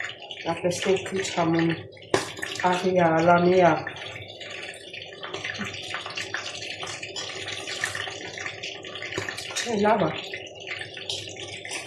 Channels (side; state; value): both; identical; correlation 1.00